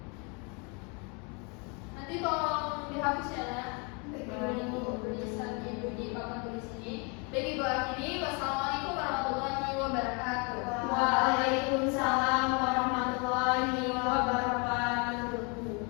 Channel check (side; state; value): right; quieter; 33.0 dB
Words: Nanti tolong dihapus ya, Nak. Ibu tulisan Ibu di papan tulis ini. Baik, Ibu akhiri. Wassalamualaikum warahmatullahi wabarakatuh.